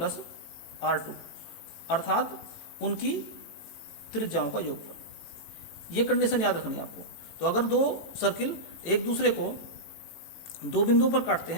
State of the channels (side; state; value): right; late; 18 ms